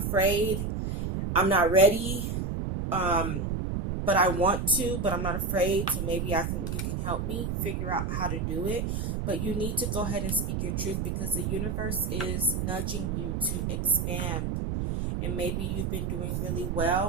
I'm not ready, but I want to, but I'm not afraid, so maybe you can help me figure out how to do it. But you need to go ahead and speak your truth, because the universe is nudging you to expand. And maybe you've been doing really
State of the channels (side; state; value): right; noise; rumble, 1 dB below the sound